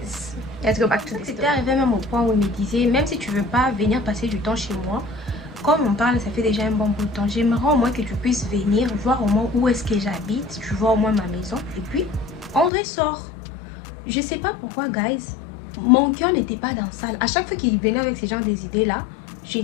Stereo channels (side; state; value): right; drops out; at 12.7 s